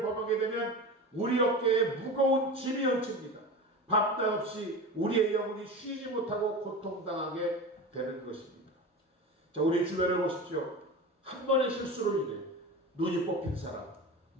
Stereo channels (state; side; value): normal; both; correlation 0.29